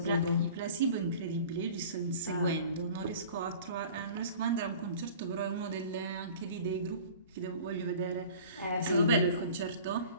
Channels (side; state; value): both; inverted; correlation -0.44